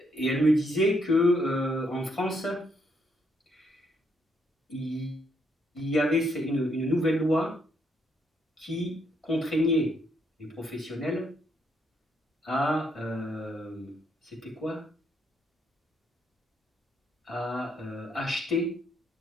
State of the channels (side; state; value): both; normal; correlation 0.74